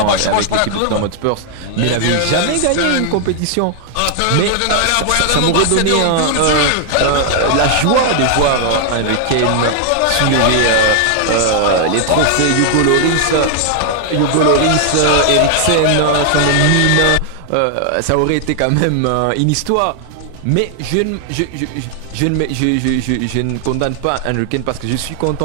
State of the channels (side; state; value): both; different; correlation 0.00